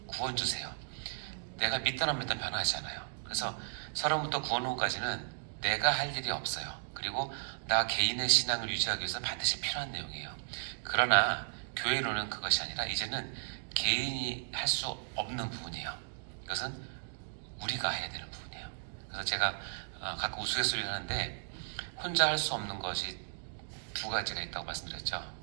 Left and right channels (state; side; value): silent; left; digital silence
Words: 구원 주세요. 내가 믿든 안 믿든 변하지 않아요. 그래서 서론부터 구원론까지는 내가 할 일이 없어요. 그리고 나 개인의 신앙을 유지하기 위해서 반드시 필요한 내용이에요. 그러나 교회론은 그것이 아니라 이제는 개인이 할 수 없는 부분이에요. 이것은 우리가 해야 되는 부분이에요. 그래서 제가 가끔 우스갯소리를 하는데, 혼자 할 수 없는 것이 2가지가 있다고 말씀드렸죠.